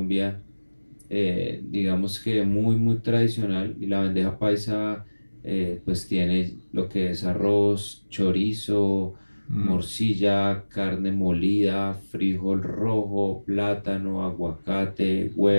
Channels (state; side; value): inverted; both; correlation -1.00